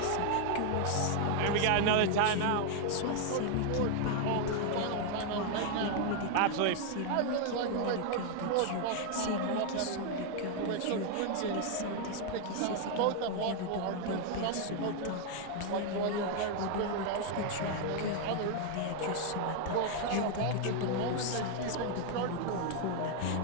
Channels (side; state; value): both; different; correlation 0.00